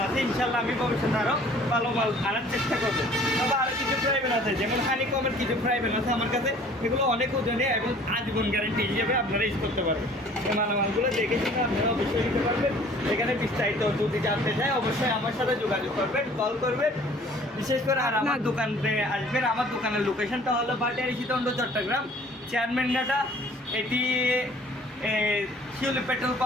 আছে। ইনশাল্লাহ আমি ভবিষ্যতে আরও ভালো মাল আনার চেষ্টা করবো। তবে আরও কিছু ফ্রাইবেন আছে, যেমন হানিকমের কিছু ফ্রাইবেন আছে আমার কাছে। এগুলো অনেক ওজনে এবং আজীবন গ্যারান্টি হিসেবে আপনারা ইউজ করতে পারবেন। এই মালামালগুলো দেখে শুনে আপনারা অবশ্যই নিতে পারবেন। এখানে বিস্তারিত যদি জানতে চাই অবশ্যই আমার সাথে যোগাযোগ করবেন, কল করবেন। বিশেষ করে আর আমার দোকানে আসবেন। আমার দোকানের লোকেশনটা হলো ভাটিয়ারি সীতাকুণ্ড চট্টগ্রাম, চেয়ারম্যান ঘাটা। এটি শিউলি পেট্রোল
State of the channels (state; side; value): normal; both; correlation 0.52